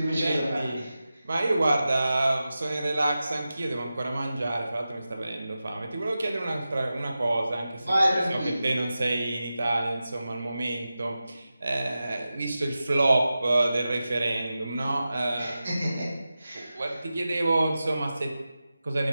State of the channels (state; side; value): inverted; both; correlation -0.93